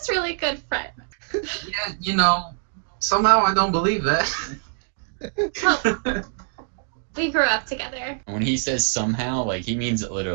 really good friends. Yeah, you know, somehow I don't believe that. Well, we grew up together. When he says somehow, like he means it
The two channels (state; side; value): silent; left; 63 dB below the other